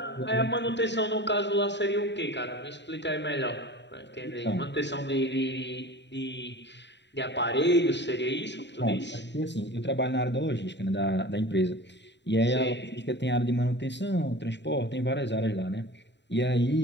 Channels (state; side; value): late; right; 0.52 ms